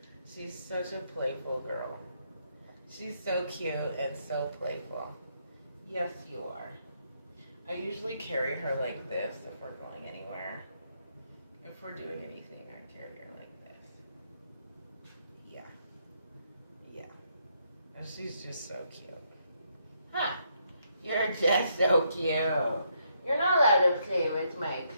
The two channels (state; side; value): inverted; both; correlation -0.75